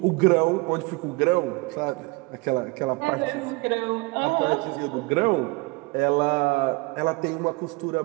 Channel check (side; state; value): left; quieter; 25.6 dB